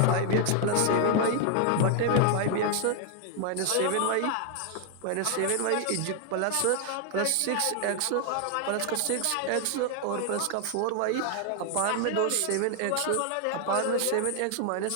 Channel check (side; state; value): both; different; correlation 0.00